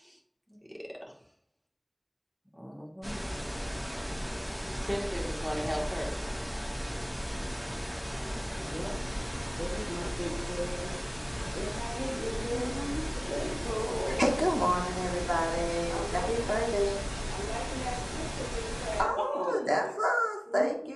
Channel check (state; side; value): identical; both; correlation 1.00